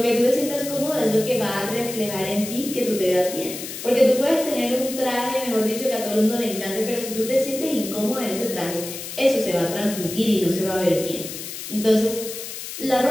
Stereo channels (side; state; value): left; noise; hiss, 9 dB below the sound